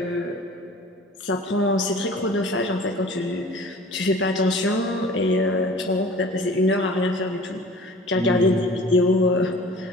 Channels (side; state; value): both; normal; correlation 0.44